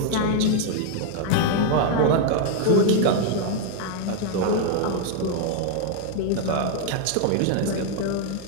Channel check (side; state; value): both; different; correlation 0.00